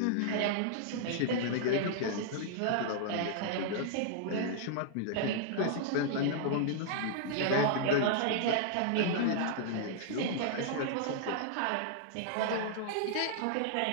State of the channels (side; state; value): both; different; correlation -0.01